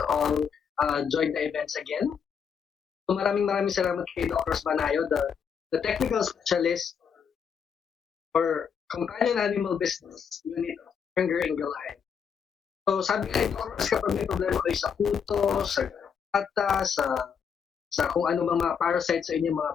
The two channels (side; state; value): right; quieter; 7.0 dB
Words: all join the events again. So maraming salamat kay Doc Ross Banayo, the technical specialist for companion animal business unit of Berenger Ingelheim. So sabi nga ito, kapag may problema kayo sa puto, sa gata, sa kung ano mga parasites sa inyong mga